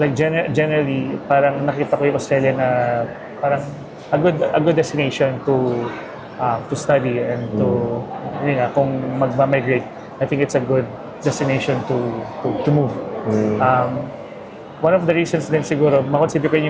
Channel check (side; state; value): both; identical; correlation 1.00